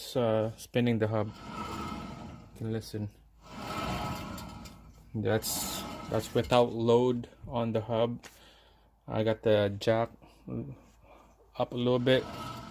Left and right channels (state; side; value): identical; both; correlation 1.00